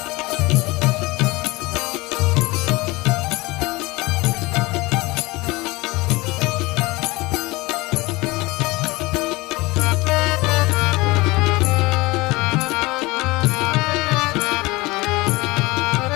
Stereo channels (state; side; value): quieter; right; 22.2 dB